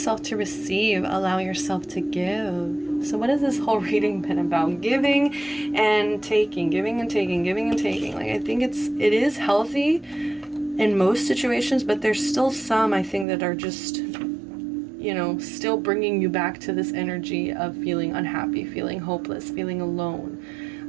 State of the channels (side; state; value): left; drops out; at 13.2 s